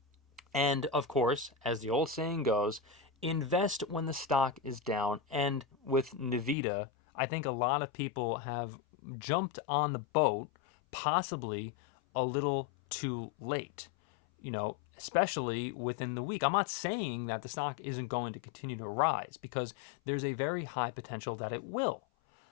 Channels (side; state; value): right; drops out; at 6.6 s